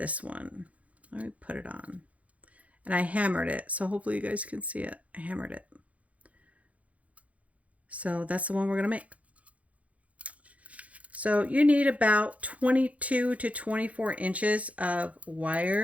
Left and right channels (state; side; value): late; left; 0.067 ms